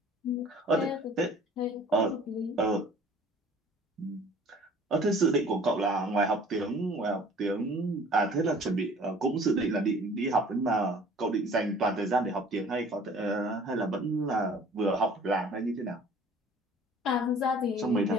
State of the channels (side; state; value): both; normal; correlation 0.50